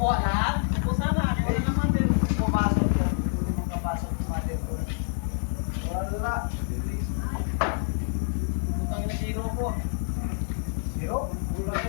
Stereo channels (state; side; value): silent; right; 59 dB below the other